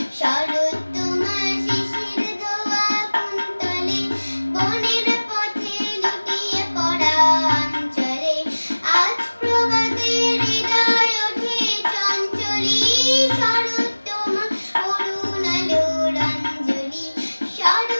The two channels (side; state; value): both; inverted; correlation -1.00